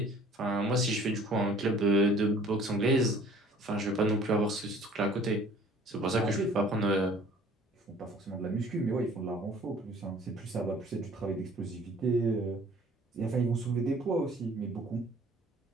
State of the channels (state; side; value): normal; both; correlation 0.52